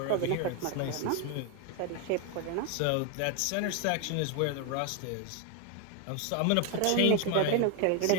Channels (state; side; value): different; both; correlation 0.01